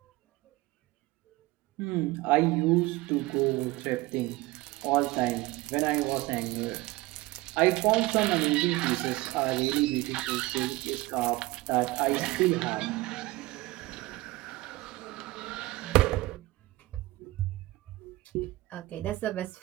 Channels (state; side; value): quieter; left; 20.0 dB